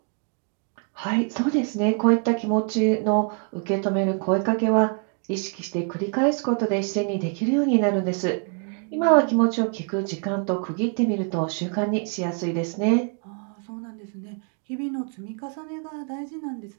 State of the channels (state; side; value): quieter; left; 39.5 dB